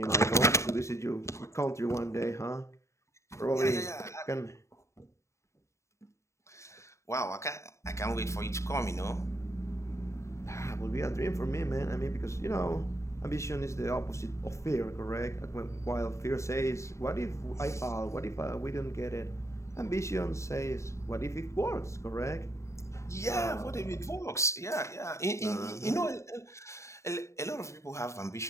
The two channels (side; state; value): right; late; 0.14 ms